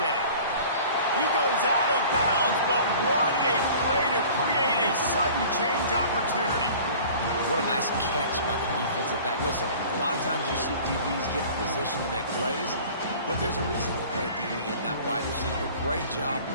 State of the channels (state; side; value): inverted; both; correlation -0.45